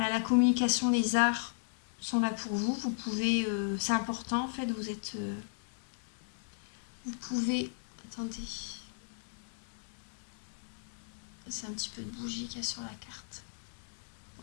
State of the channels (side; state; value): right; silent; digital silence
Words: la communication, les arts sont là pour vous. Vous pouvez... c'est important, en fait. Vous êtes... vous pouvez... Attendez. C'est un petit peu de bougie qu'il y a sur la carte.